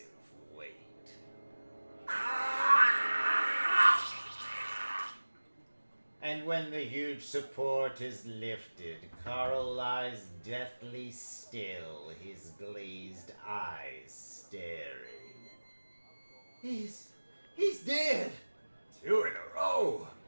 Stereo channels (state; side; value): inverted; both; correlation -1.00